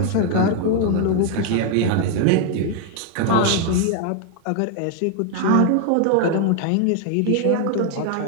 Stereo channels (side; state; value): both; different; correlation 0.00